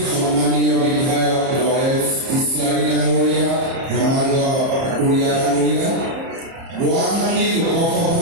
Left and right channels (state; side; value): late; left; 30 ms